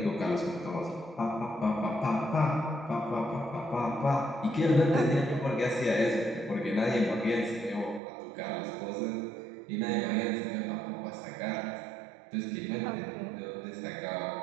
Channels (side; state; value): left; drops out; at 8.0 s